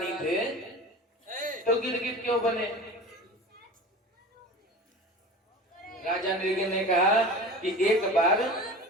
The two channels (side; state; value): both; normal; correlation 0.35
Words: थे तो गिरगिट क्यों बने? राजा नृग ने कहा कि एक बार